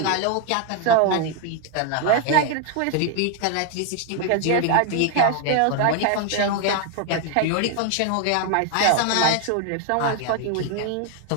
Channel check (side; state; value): both; different; correlation 0.01